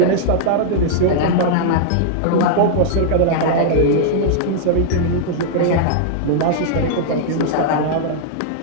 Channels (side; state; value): both; different; correlation -0.01